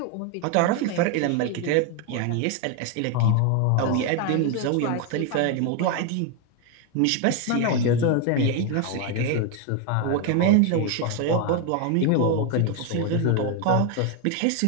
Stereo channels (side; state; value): both; different; correlation 0.01